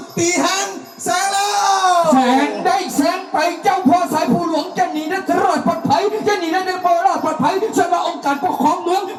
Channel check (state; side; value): identical; both; correlation 1.00